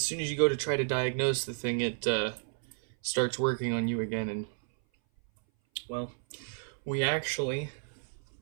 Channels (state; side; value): silent; left; 57 dB below the other